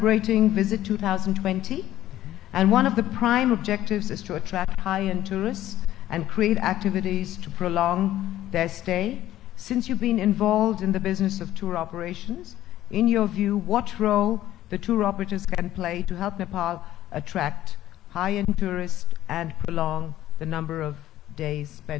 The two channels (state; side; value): quieter; right; 13.7 dB